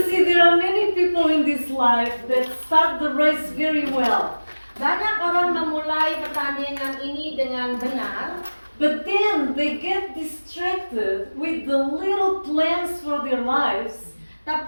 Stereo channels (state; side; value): inverted; both; correlation -1.00